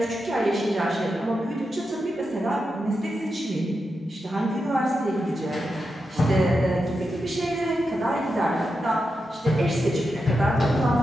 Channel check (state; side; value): normal; both; correlation 0.88